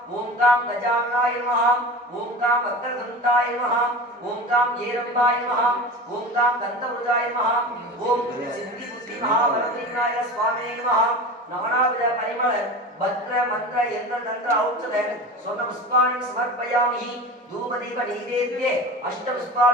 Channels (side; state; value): both; normal; correlation 0.32